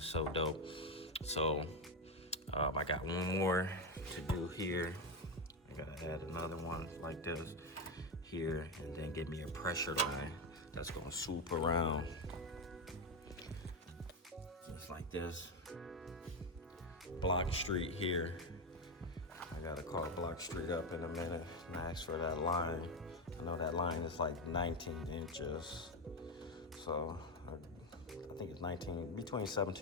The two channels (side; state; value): both; normal; correlation 0.10